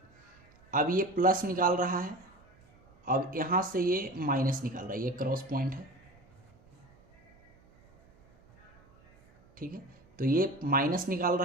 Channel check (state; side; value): noise; right; hum, 30 dB below the sound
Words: अब ये प्लस निकाल रहा है, अब यहाँ से ये माइनस निकाल रहा है, ये क्रॉस पॉइंट है, ठीक है। तो ये माइनस निकाल